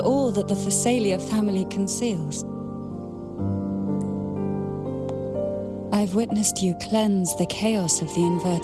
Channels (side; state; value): both; identical; correlation 1.00